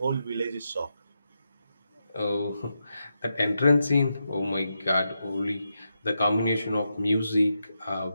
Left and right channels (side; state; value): both; inverted; correlation -0.86